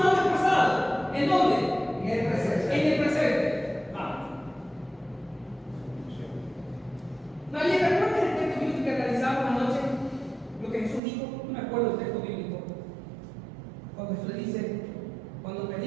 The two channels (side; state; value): left; drops out; at 11.0 s